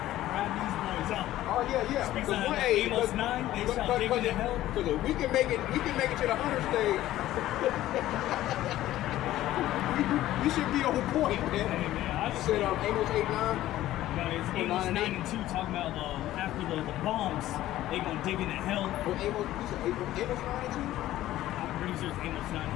these boys out. Oh yeah. Speaks out of Amos 9. They shall dig into hell. Because if we can make it to the hunter stage. We should be on point, man. Hey, man, I just said Amos 8:9. It's Amos 9:2 talking about after the bombs, they gonna dig into hell. Well, Amos 9:2? I'm pretty sure it's Amos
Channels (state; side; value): quieter; right; 14.5 dB